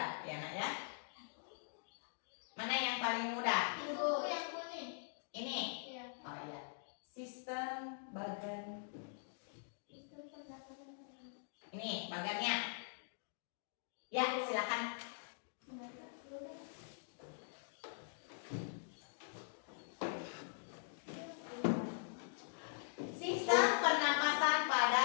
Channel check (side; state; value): right; silent; digital silence